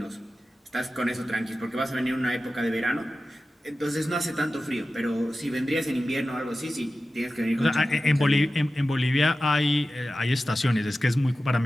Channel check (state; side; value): normal; both; correlation 0.94